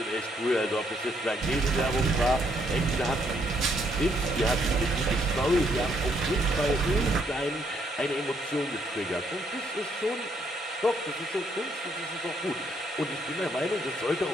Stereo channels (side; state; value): both; normal; correlation 0.71